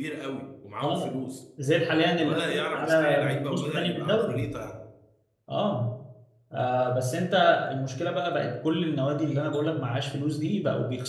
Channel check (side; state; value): both; identical; correlation 1.00